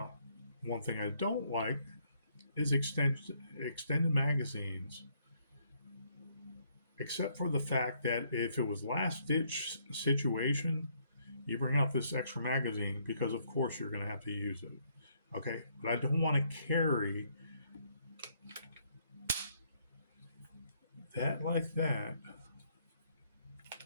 one thing I don't like is extended magazines. Except for the fact that if it was last ditch situation, you bring out this extra magazine because of course you're going to have to use it. Okay, but I don't want to carry that like that.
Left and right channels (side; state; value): both; inverted; correlation -0.70